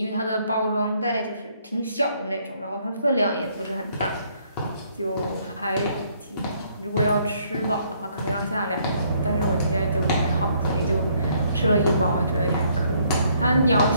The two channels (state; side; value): inverted; both; correlation -0.67